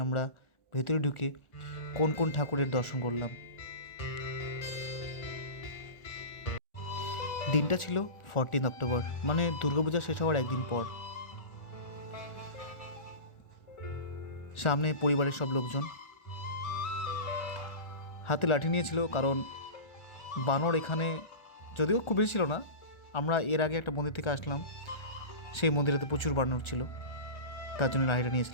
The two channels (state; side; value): late; right; 1.4 ms